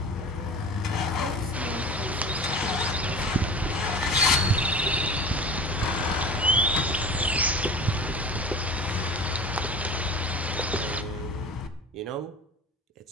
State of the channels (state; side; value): normal; both; correlation 0.37